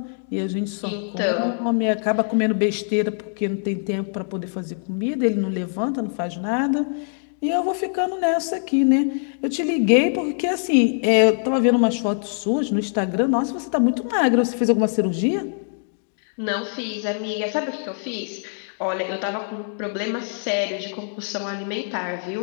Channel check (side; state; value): right; silent; digital silence